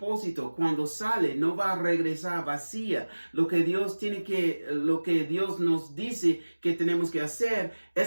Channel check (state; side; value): inverted; both; correlation -1.00